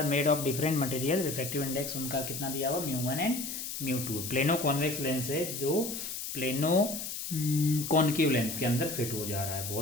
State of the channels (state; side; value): noise; left; hiss, 6 dB below the sound